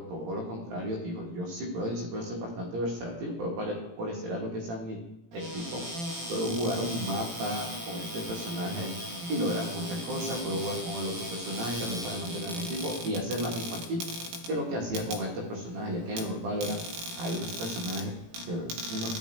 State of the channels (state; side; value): late; left; 18 ms